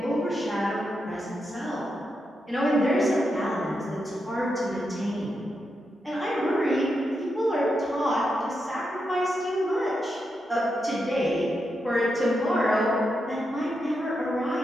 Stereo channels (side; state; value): both; normal; correlation 0.85